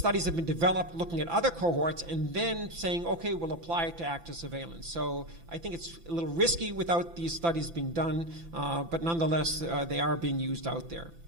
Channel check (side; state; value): left; late; 5.9 ms